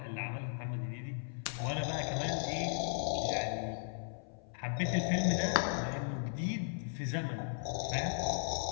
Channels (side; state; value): right; silent; 53 dB below the other